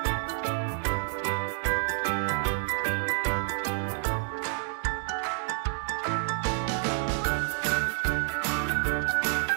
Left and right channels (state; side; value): silent; left; digital silence